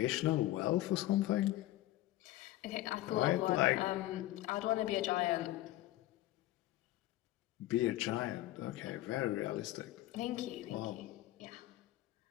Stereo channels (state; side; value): quieter; right; 15.8 dB